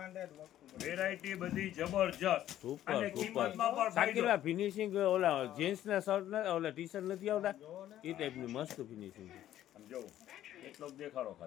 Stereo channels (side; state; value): right; quieter; 12.4 dB